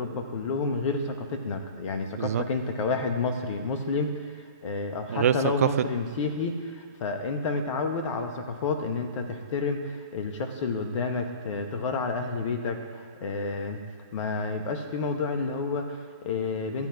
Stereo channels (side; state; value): both; inverted; correlation -0.36